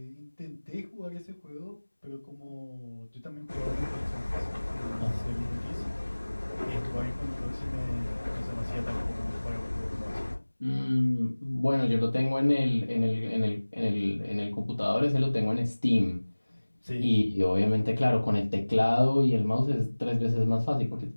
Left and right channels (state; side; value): inverted; both; correlation -1.00